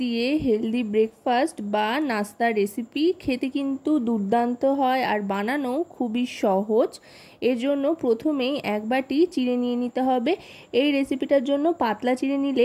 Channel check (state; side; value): identical; both; correlation 1.00